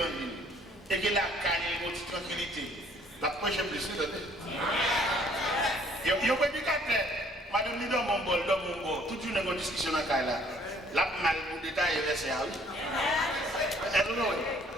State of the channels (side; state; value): both; normal; correlation 0.60